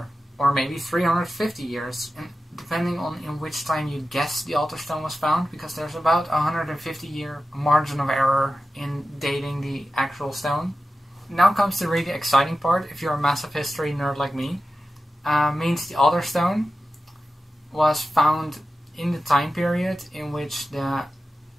or maybe 350 years, and depending on in which time you guess the altarstone was found, because there's about a 150-year margin of error in dating the actual stone. Now comes the really exciting part, if you're a massive history nerd like me. Means the altarstone was found in the time period in which the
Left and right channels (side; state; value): both; normal; correlation 0.93